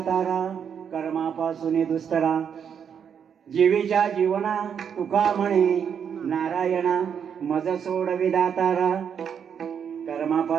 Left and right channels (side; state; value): left; quieter; 7.6 dB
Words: कर्मापासून दुस्तरा, जीवीच्या जीवना तुका म्हणे नारायणा. मज सोडवी दातारा